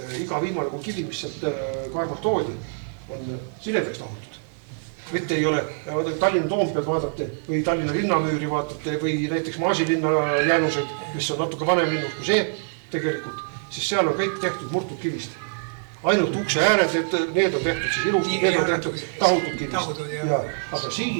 iga viimane kui kivi, mis sealt Kaarmalt toodi, on siledaks tahutud. Mitte ei ole, Tallinna Toompead vaatate või Tallinna linnamüüri vaatate või näiteks Maasilinna jäänused, mis on natuke vanem linnus kui see tegelikult, siis seal on kõik tehtud murtud kivist. Ainult ukse ääred, need on tehtud siis ilusti, need on tehtud tahutud kivist. Aga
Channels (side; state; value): left; silent; 62 dB below the other